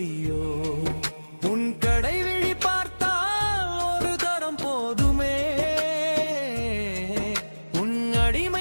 உன் கடை விழி பார்த்தால் ஒரு தரம் போதுமே உன்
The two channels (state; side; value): inverted; both; correlation -1.00